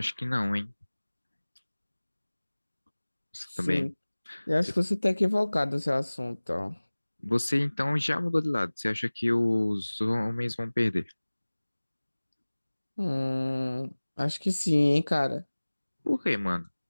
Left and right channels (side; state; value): both; inverted; correlation -1.00